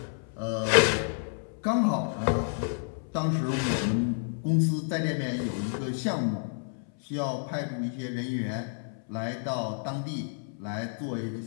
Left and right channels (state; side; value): silent; right; 58 dB below the other